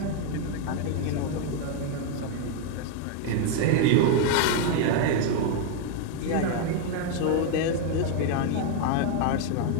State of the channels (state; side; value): different; both; correlation 0.01